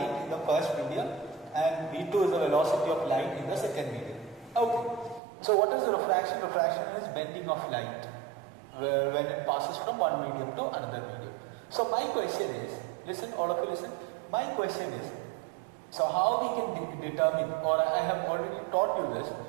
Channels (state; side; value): drops out; left; at 5.2 s